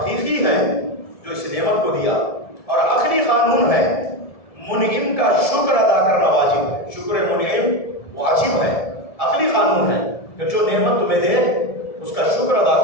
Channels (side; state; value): right; late; 1.7 ms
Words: ہے جو اس نعمت کو دیا۔ اور عقلی قانون ہے، منعم کا شکر ادا کرنا واجب ہے، شکر منعم واجب ہے، عقلی قانون ہے کہ جو نعمت تمہیں دے اس کا شکر ادا